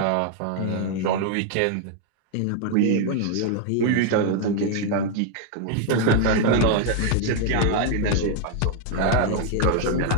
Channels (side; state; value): both; different; correlation 0.00